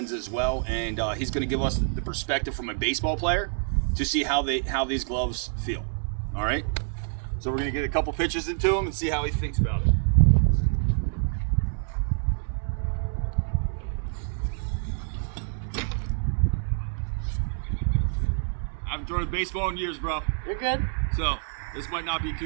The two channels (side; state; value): left; silent; digital silence